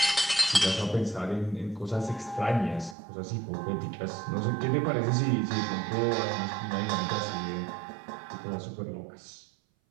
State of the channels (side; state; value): left; drops out; at 3.0 s